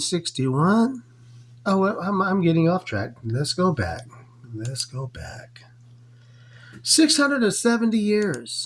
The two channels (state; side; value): identical; both; correlation 1.00